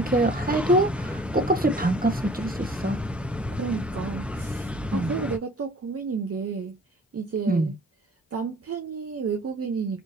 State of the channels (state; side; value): normal; both; correlation 0.50